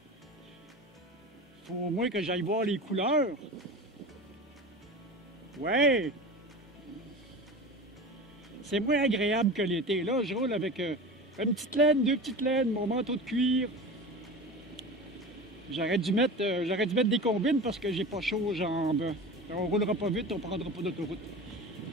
Faut au moins que j'aille voir les couleurs. Ouais! C'est moins agréable que l'été. Là, je roule avec une petite laine, 2 petites laines, mon manteau de cuir. J'aurais dû mettre des combines parce que j'ai pas chaud aux jambes. On roulera pas vite, on prendra pas d'autoroute.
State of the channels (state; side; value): normal; both; correlation 0.31